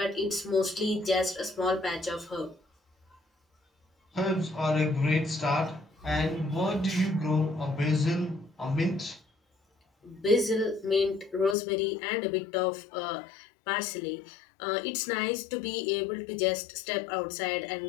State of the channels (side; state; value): right; drops out; at 11.6 s